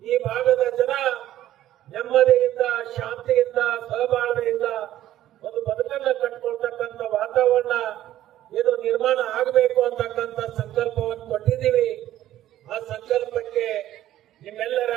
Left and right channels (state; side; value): quieter; left; 13.2 dB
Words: ಈ ಭಾಗದ ಜನ ನೆಮ್ಮದಿಯಿಂದ, ಶಾಂತಿಯಿಂದ, ಸಹಬಾಳ್ವೆಯಿಂದ ಒಂದು ಬದುಕನ್ನ ಕಟ್ಕೊಳ್ತಕ್ಕಂಥ ವಾತಾವರಣ ಏನು ನಿರ್ಮಾಣ ಆಗಬೇಕು ಅಂತಕ್ಕಂಥ ಸಂಕಲ್ಪವನ್ನು ಕೊಟ್ಟಿದ್ದೀವಿ. ಆ ಸಂಕಲ್ಪಕ್ಕೆ ನಿಮ್ಮೆಲ್ಲರ